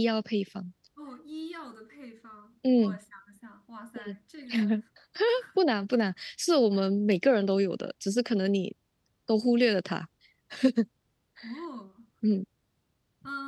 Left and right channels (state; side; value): identical; both; correlation 1.00